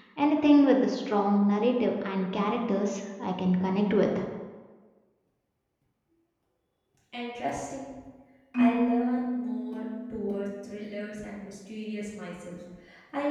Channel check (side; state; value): both; identical; correlation 1.00